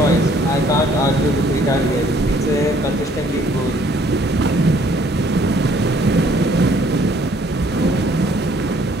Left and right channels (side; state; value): both; normal; correlation 0.61